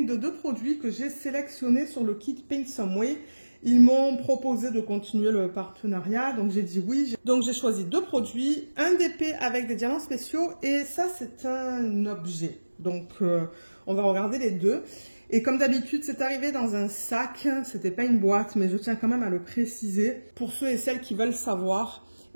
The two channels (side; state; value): both; inverted; correlation -1.00